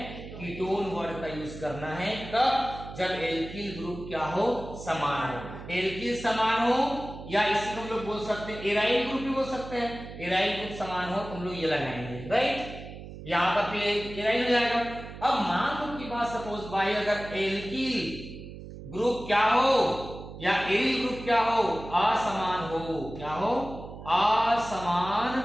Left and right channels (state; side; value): noise; right; hum, 12 dB below the sound